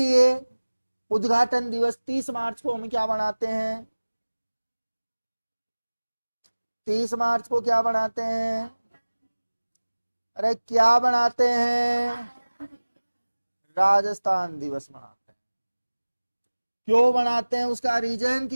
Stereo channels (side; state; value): both; inverted; correlation -1.00